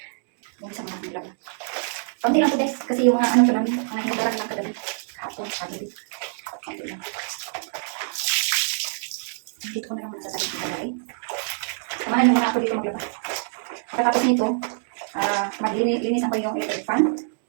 Umpisa mo natin lang. Kunti lang po guys, kasi yung mga ko namin, mga hinugaran lang kagabi. Kahapon, kagabi. Kunti lang. Dito ko na lang muna sasabihin ko bagay. Samahan mo na ako dito maglaba. Pagkatapos nito, maglinisan ko yung electric fan.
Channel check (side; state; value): left; silent; digital silence